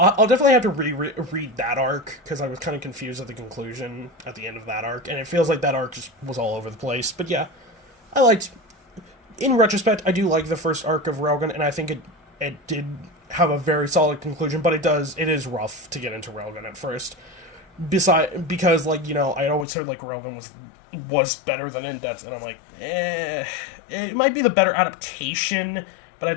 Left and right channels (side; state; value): right; drops out; at 19.7 s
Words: definitely have to read that arc, because I was kind of confused at the conclusion at the end of that arc, and it feels like that arc just was all over the place. But yeah, in retrospect, I do like the first arc of Railgun, and I think it did have a very solid conclusion, but it is rough to get into Railgun at first. Because, like, you know, I always said, like, Railgun was better than Index, and I'm like, it might be the better adaptation, but I